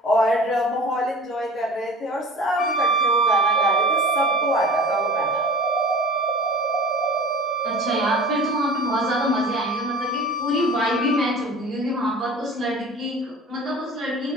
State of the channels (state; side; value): normal; both; correlation 0.40